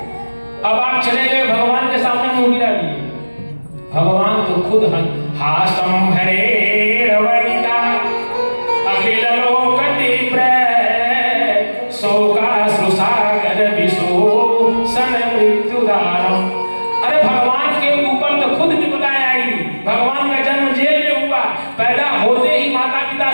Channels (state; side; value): inverted; both; correlation -1.00